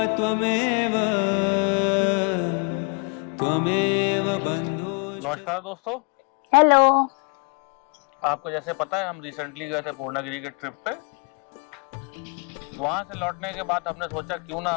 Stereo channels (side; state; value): right; quieter; 36.4 dB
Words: त्वमेव त्वमेव बंधु। नमस्कार दोस्तों। हेलो। आपको जैसे पता है हम रिसेंटली गए थे पूर्णागिरी के ट्रिप पे। वहां से लौटने के बाद हमने सोचा क्यों ना